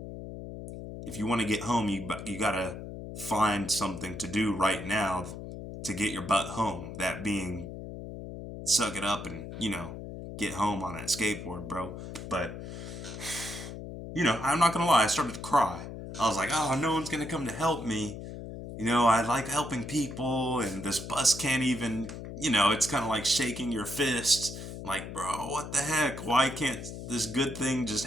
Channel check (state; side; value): noise; left; hum, 9 dB below the sound